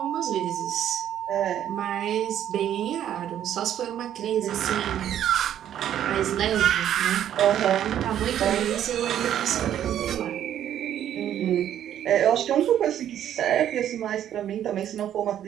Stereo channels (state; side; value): quieter; left; 10.7 dB